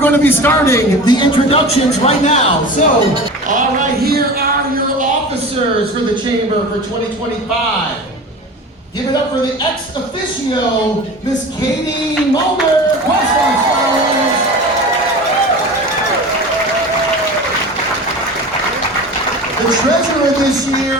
to be starting the introductions right now. So, all right, here are your officers for the Chamber for 2025. Give it up for the ex officio, Miss Katie Muellner, Question Scholars. The treasurer this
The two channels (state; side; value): normal; both; correlation 0.34